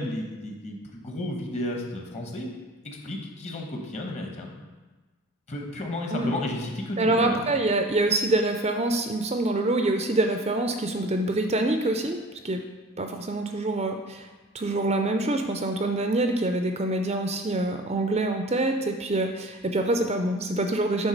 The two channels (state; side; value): normal; both; correlation 0.43